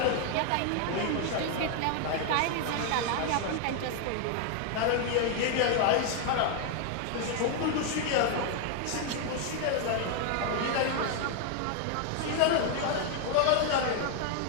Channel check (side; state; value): both; different; correlation 0.00